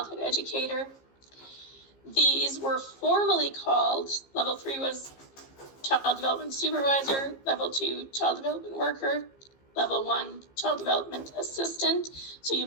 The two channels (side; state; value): right; late; 15 ms